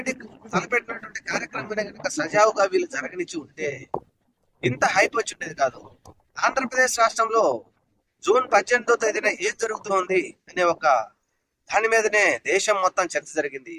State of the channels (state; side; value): identical; both; correlation 1.00